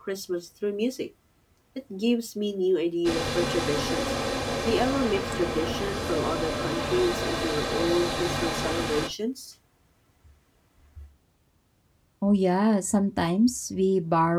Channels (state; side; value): identical; both; correlation 1.00